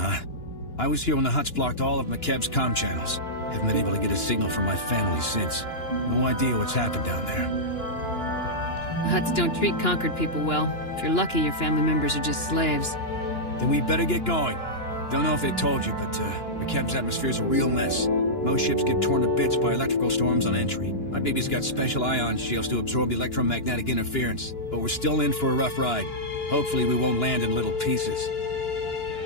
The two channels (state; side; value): late; right; 2.9 ms